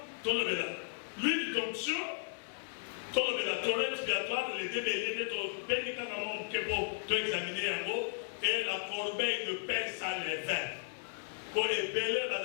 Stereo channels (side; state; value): right; silent; 54 dB below the other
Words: tolobela l'huile d'onction. Tout le toilette expiatoire, les débéliers de ton béni quand on peut examiner un mot et la corbeille de pain sans les vins. Pour les bélés,